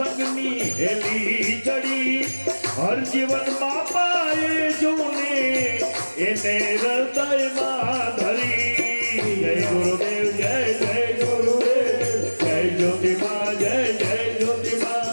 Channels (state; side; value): inverted; both; correlation -1.00